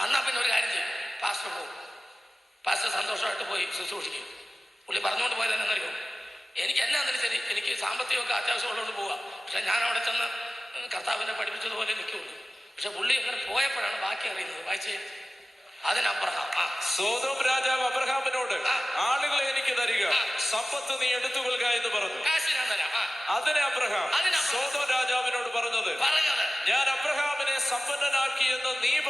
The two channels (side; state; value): both; normal; correlation 0.96